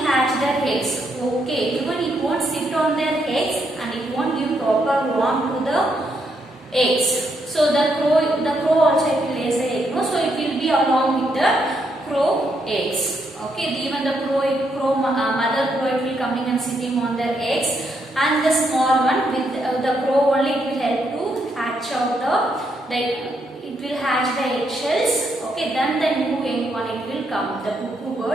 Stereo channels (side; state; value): both; normal; correlation 0.77